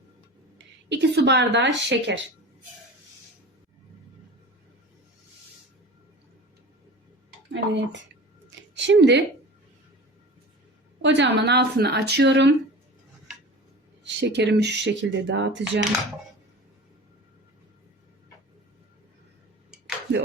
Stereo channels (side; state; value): both; normal; correlation 0.36